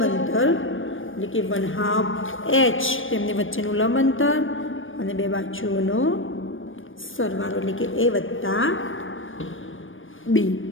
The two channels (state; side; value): late; right; 0.58 ms